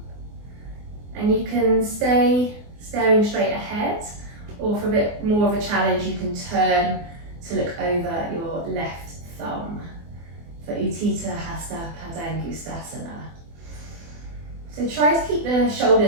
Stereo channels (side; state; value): left; late; 24 ms